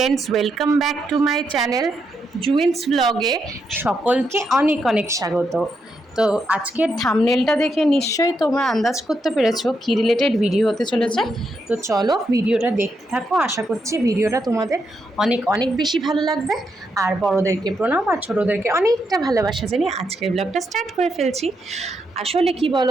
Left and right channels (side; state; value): both; normal; correlation 0.81